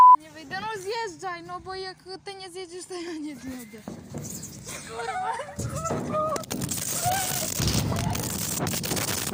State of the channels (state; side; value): identical; both; correlation 1.00